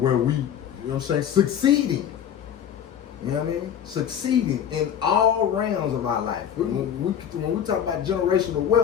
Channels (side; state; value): right; quieter; 9.0 dB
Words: we, you know what I'm saying, succeeding. You know what I mean? Succeeding in all realms of our life. When we talk about generational